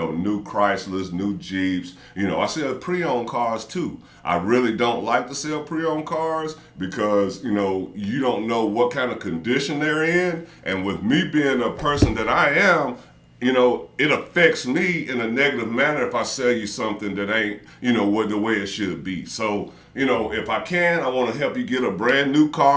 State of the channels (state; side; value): identical; both; correlation 1.00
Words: new Chryslers, new Jeeps. You know, I sell pre-owned cars, too. I really don't like to sell pre-owned cars because, you know, you don't know what kind of condition they're in. And with me being a person that I am, you know, it affects me in a negative manner if I sell you something that ain't, you know, the way it should be. So, you know, if I can, I want to help you get a brand new